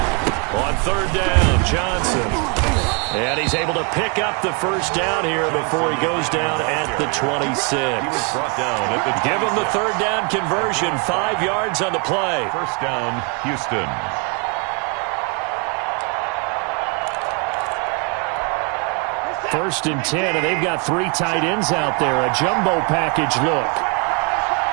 On 3rd down, Johnson. And he's able to pick up the first down here before he goes down at the 26. Give him the 3rd down conversion, 5 yards on the play. First down, Houston. First and 10, and they've got 3 tight ends out there. A jumbo package look.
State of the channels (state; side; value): quieter; left; 33.7 dB